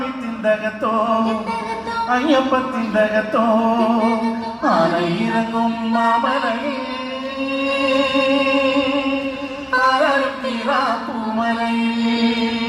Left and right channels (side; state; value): both; identical; correlation 1.00